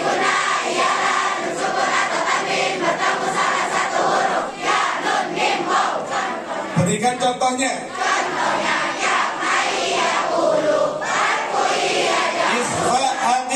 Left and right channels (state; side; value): identical; both; correlation 1.00